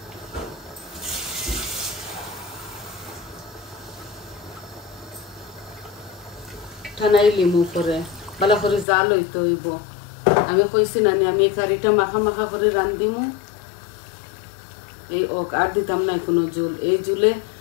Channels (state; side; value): drops out; right; at 8.8 s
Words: ঠানাই লিমু করে ভালো করে জাল হইতে হইব আমি কইছি না আমি এই কারিটা মাখা মাখা করে রান্ধিমু এই আর দিতাম না কোনো জল এই জুলে